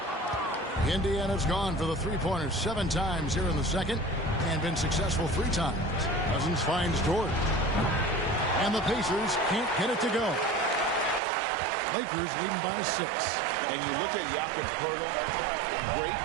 Indiana's gone for the three-pointers 7 times here in the second and been successful 3 times. Cousins finds Dort. And the Pacers can't get it to go. Lakers leading by 6. And you look at Jakob Poeltl, great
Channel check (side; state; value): left; drops out; at 11.2 s